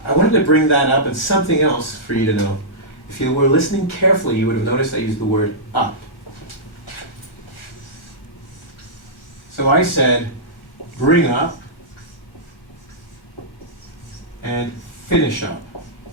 I wanted to bring that up and something else for you to know. If you were listening carefully, you would have noticed I used the word up. So I said bring up and finish up.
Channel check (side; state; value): right; late; 1.4 ms